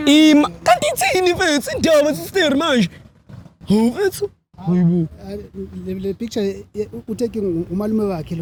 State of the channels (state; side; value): identical; both; correlation 1.00